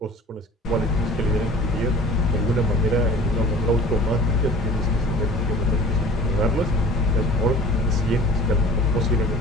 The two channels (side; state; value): both; normal; correlation 0.45